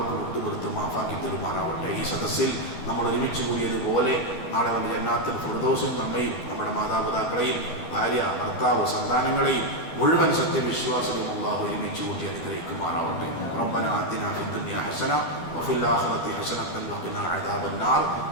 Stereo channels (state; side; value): late; right; 12 ms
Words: വിട്ടുപുറത്ത് മാഫാക്കി തരുമാറാവട്ടെ. ഈ സദസ്സിൽ നമ്മൾ ഒരുമിച്ച് കൂടിയതുപോലെ നാളെ വന്ന ജന്നാത്തുൽ ഫിർദൗസിൽ നമ്മയും നമ്മുടെ മാതാപിതാക്കളെയും ഭാര്യ, ഭർത്താവ്, സന്താനങ്ങളെയും മുഴുവൻ സത്യവിശ്വാസികളും അല്ലാഹു ഒരുമിച്ച് കൂട്ടി അനുഗ്രഹിക്കുമാറാവട്ടെ. റബ്ബനാ ആതിനാ ഫിദ്ദുനിയാ ഹസന വഫിൽ ആഖിറതി ഹസനതൻ വഖിനാ അദാബന്നാർ